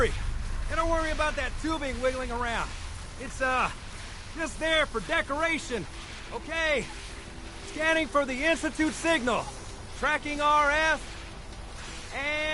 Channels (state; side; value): identical; both; correlation 1.00